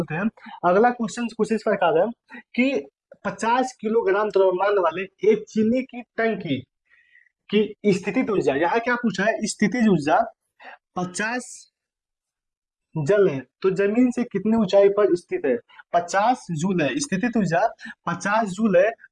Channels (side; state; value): both; identical; correlation 1.00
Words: हैं। अगला क्वेश्चन कुछ इस प्रकार है कि 50 किलोग्राम द्रव्यमान वाले एक चीनी की टंकी की स्थितिज ऊर्जा, यहाँ क्या पूछा है, स्थितिज ऊर्जा 50 जल है तो जमीन से कितनी ऊंचाई पर स्थित है, 50 जूल है, स्थितिज ऊर्जा 50 जूल है